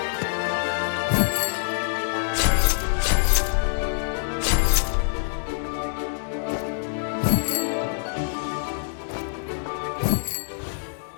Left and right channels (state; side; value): silent; right; 62 dB below the other